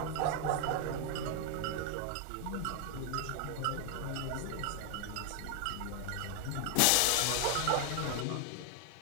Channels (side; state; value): both; different; correlation 0.00